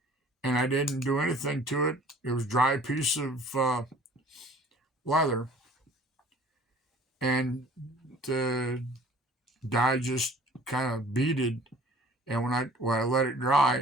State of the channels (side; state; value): both; normal; correlation 0.50